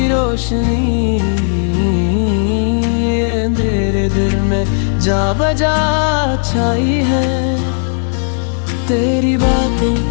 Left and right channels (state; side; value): silent; right; digital silence